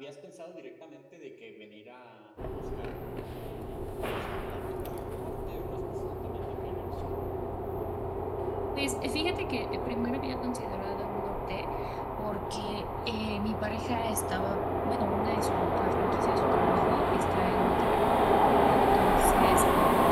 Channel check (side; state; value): both; identical; correlation 1.00